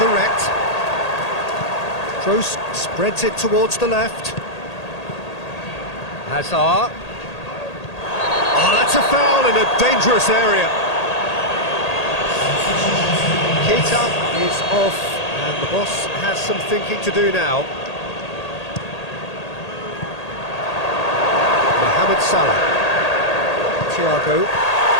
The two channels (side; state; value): right; late; 1.8 ms